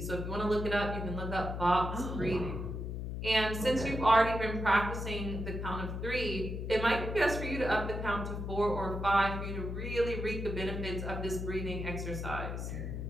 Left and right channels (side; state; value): left; noise; hum, 4 dB below the sound